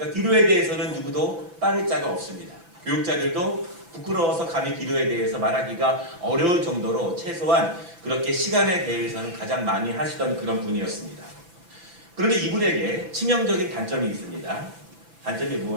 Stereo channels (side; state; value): left; late; 5.8 ms